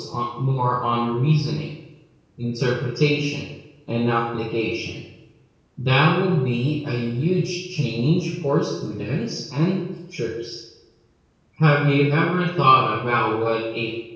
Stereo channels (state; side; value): identical; both; correlation 1.00